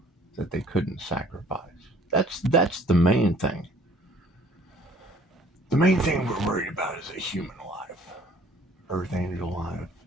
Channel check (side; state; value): both; normal; correlation 0.55